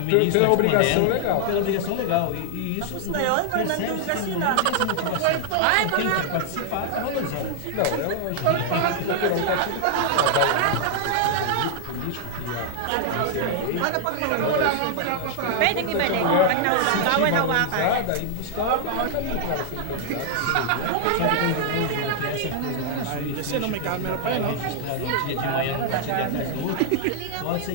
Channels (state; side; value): different; both; correlation 0.00